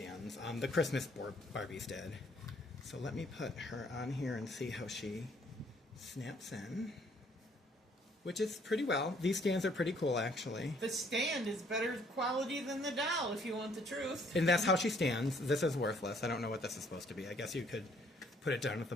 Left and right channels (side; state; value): both; normal; correlation 0.64